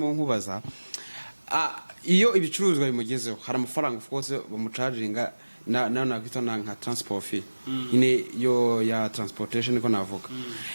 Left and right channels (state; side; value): inverted; both; correlation -1.00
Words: nkubaza iyo ibicuruzwa bimugezeho hari amafaranga of course bamucharginga na kwita nka transport fee ine yo ya transportation niko navuga